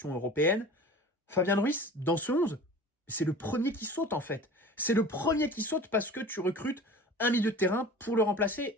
européennes, Fabian Ruiz, dans ce 11, c'est le premier qui saute, en fait. C'est le premier qui saute parce que tu recrutes un milieu de terrain pour le remplacer.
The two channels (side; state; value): both; normal; correlation 0.39